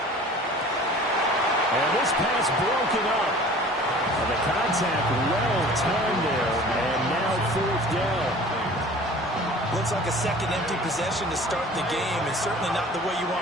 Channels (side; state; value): both; normal; correlation 0.45